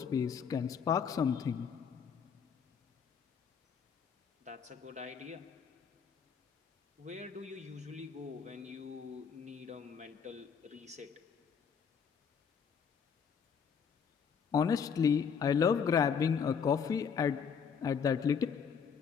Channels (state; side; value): quieter; right; 6.7 dB